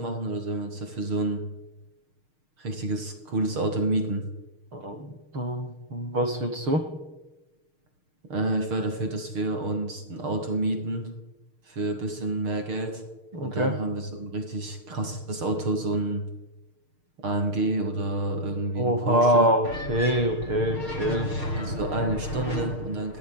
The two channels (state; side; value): late; left; 6.5 ms